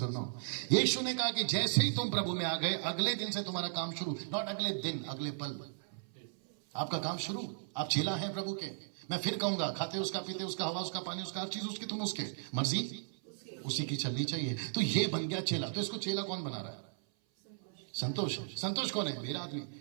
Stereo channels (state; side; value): silent; left; 54 dB below the other